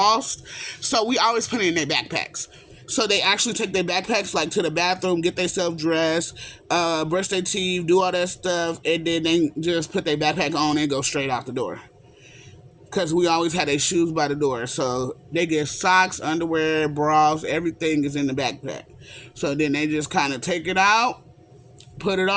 so we always put it in their backpacks. So they actually take their backpacks like to the bathroom, get themselves dressed, brush their teeth, do all that stuff, and then they just put their backpack on and go straight out the door. Because we always had their shoes by the door. So they get socks, underwear, bras, everything is in the backpack. So then they just kind of take it out, put it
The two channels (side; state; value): both; identical; correlation 1.00